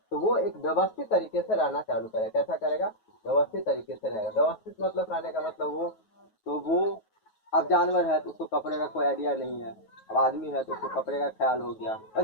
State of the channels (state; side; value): late; right; 9.3 ms